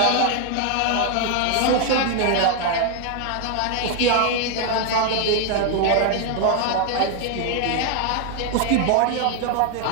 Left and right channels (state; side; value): different; both; correlation 0.01